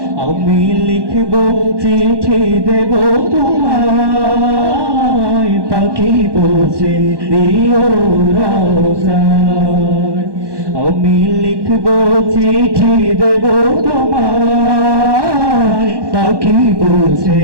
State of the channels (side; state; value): left; late; 1.1 ms